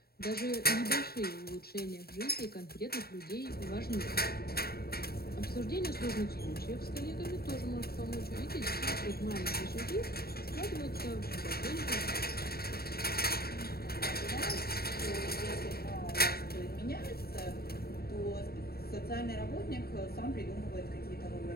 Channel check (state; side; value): late; right; 0.45 ms